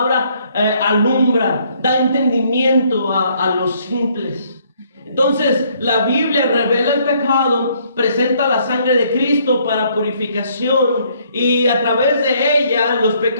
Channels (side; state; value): both; inverted; correlation -0.66